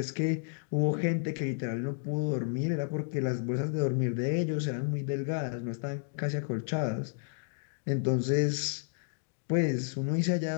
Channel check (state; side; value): silent; right; digital silence